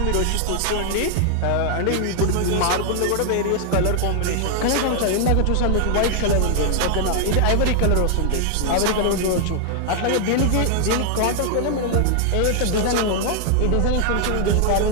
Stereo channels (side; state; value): both; different; correlation 0.00